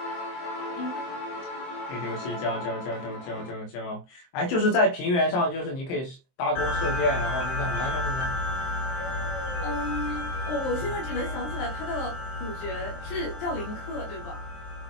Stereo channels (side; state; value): right; late; 23 ms